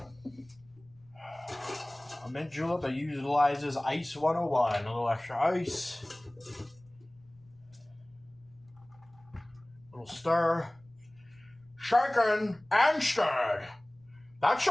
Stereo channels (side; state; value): left; noise; rumble, 29 dB below the sound